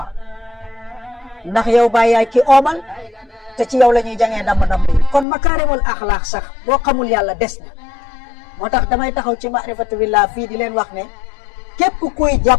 ndax yow bàyyi yaay ki oomal te ci yow la ñuy jàngee damm yi. kon makaarimul axlaaq sax boo xamul yàlla des na. moo tax damay taxaw ci maarifatu billah fii di leen wax ne képp kuy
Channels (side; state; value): right; drops out; at 5.2 s